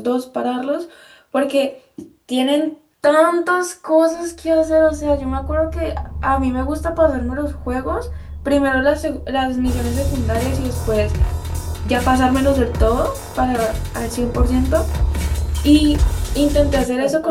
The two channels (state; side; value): identical; both; correlation 1.00